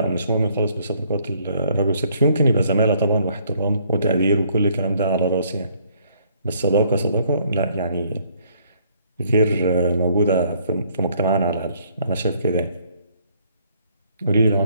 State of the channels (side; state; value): both; inverted; correlation -0.65